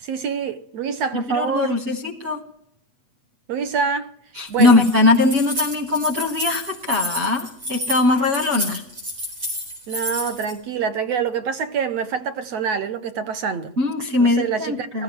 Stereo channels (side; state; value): left; late; 8.1 ms